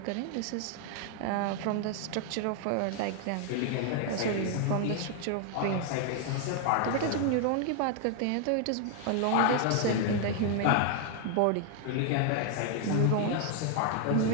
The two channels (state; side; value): different; both; correlation 0.00